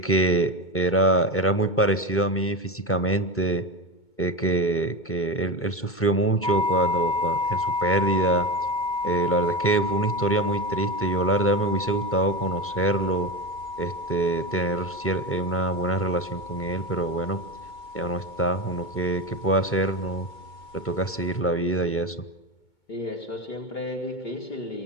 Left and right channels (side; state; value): right; late; 2.2 ms